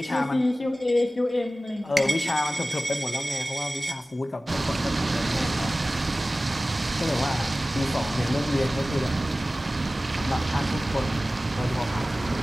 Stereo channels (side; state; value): both; normal; correlation 0.96